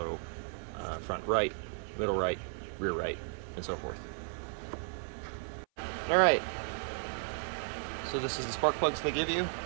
front right, middle right, rear right, and so forth. Alright, so this is the spark plugs they give you.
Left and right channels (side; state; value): left; silent; 55 dB below the other